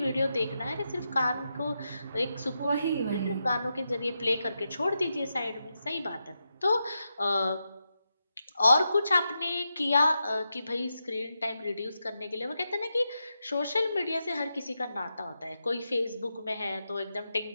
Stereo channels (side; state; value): both; inverted; correlation -0.87